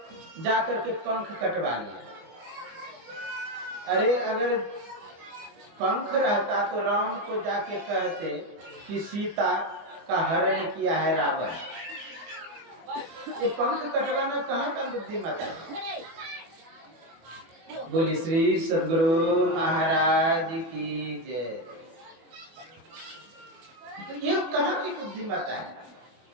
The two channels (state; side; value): late; left; 24 ms